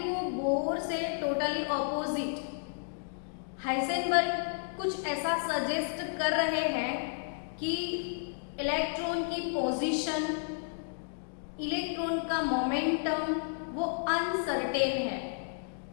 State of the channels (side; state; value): right; silent; digital silence